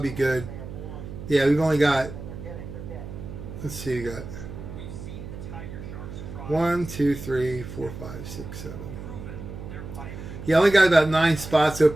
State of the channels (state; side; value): noise; right; hum, 10 dB below the sound